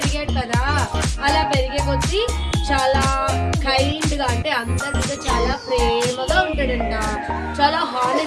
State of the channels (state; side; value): identical; both; correlation 1.00